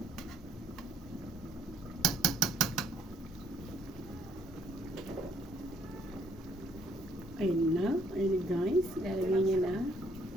Ayun na guys, ilalagay niya na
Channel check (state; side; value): normal; both; correlation 0.65